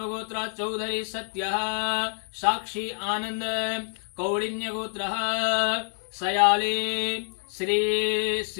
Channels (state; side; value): silent; right; 60 dB below the other